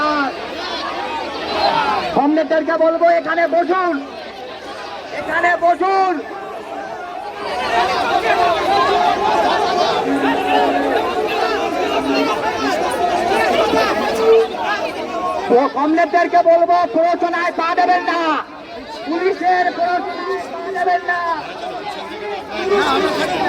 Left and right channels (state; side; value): identical; both; correlation 1.00